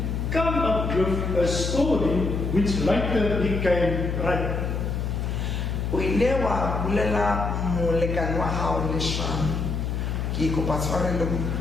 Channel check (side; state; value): left; noise; hum, 1 dB below the sound